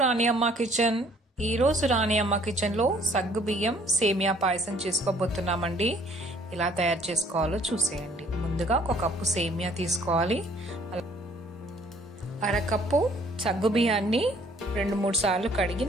అమ్మ kitchen. ఈరోజు రాణి అమ్మ కిచెన్లో సగ్గు బియ్యం సేమియా పాయసం చేసుకోబోతున్నామండి. ఎలా తయారు చేసుకోవాలో చూసేయండి. ముందుగా ఒక కప్పు సేమియా తీసుకోవాలి. అరకప్పు సగ్గు బియ్యాన్ని 2-3 సార్లు కడిగి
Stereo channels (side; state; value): both; normal; correlation 0.60